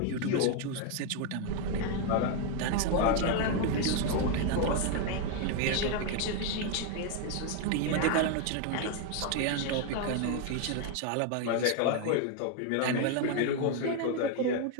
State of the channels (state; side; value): different; both; correlation 0.01